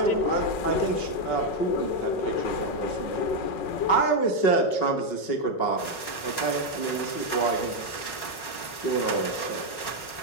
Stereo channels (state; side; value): late; right; 5.2 ms